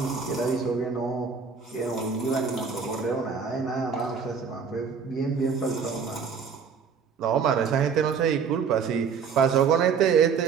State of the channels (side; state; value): left; quieter; 6.1 dB